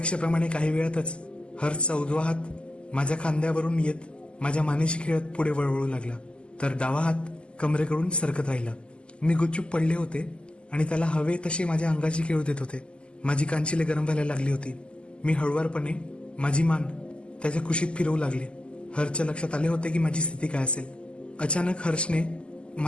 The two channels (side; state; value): right; late; 0.052 ms